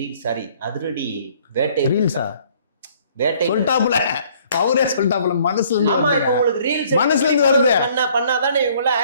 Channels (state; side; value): inverted; both; correlation -0.60